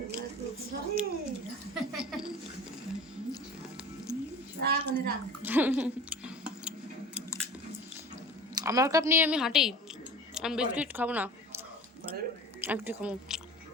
আমার কাপ নিয়ে আমি হাঁটি, আমি বিস্কিট খাবো না, একটু খাবো।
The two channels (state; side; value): normal; both; correlation 0.37